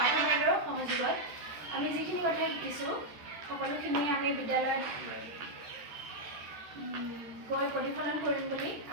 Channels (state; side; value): late; left; 13 ms